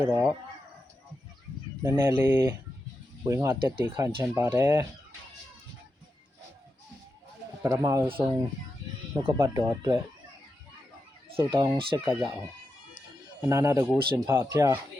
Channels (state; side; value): normal; both; correlation 0.88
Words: ီးတော့နည်းနည်းလေးဝင်ငါတက်တည်ခံချင်ပါတယ်ပထမဆုံးနှုတ်ကပတ်တော်အတွက်ဆုတောင်းဆက်ကရအောင်အနာနာတကူရှင်ဖဖျား